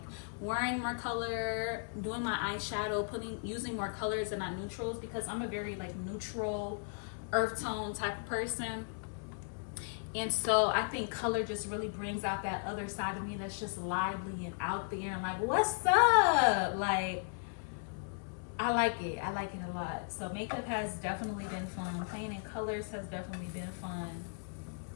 wearing more color, doing my eyeshadow, using more colors and not neutrals, because I'm a very like neutral earth tone type of person. And so I think color just really brings out that other side of me that's just lively and out there and like, what's up? Like, I like it a lot. So makeup has definitely been fun. Playing in colors has definitely been fun.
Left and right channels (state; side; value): silent; right; digital silence